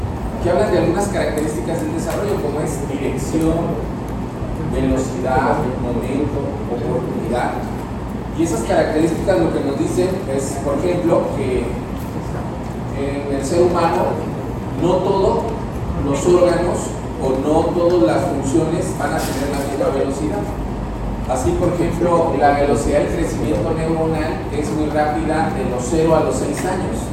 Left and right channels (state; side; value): identical; both; correlation 1.00